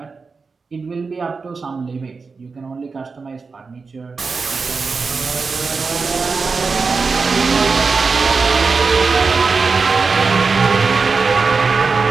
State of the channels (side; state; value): left; quieter; 4.6 dB